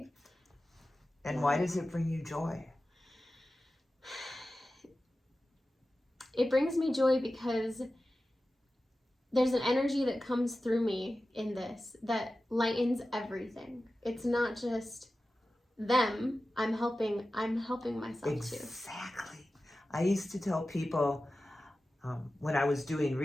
And why does it bring you joy? It brings me joy because there's an energy that comes through me in this that lightens everything. It's not just them. I'm helping myself too. Exactly. I used to tell people when I was doing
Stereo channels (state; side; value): normal; both; correlation 0.94